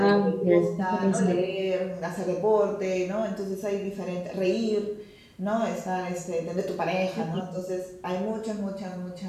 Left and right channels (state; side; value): identical; both; correlation 1.00